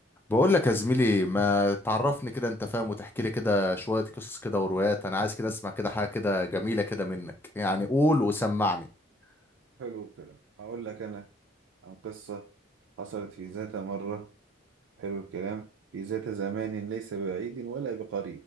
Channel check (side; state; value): both; normal; correlation 0.62